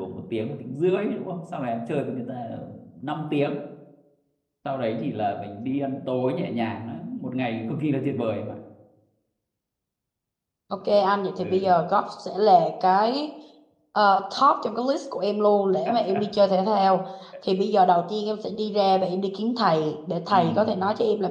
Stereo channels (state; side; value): identical; both; correlation 1.00